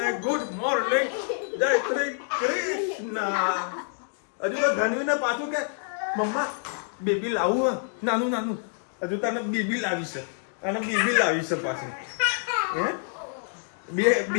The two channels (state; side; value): silent; right; 60 dB below the other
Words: ગુડ મોર્નિંગ, જય શ્રી કૃષ્ણ. હજુ તો ધનવીને પાછું કે મમ્મા બેબી લાવું નાનું નાનું. હજુ તને બેબી લાવી છે, અને બેબી લાવી છે પાછું. હે બે